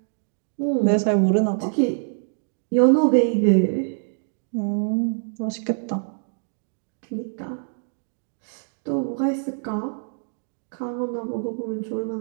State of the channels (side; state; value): left; silent; digital silence